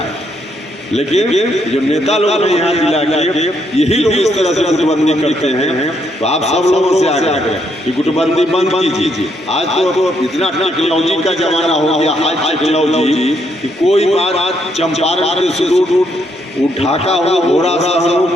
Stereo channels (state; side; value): normal; both; correlation 0.74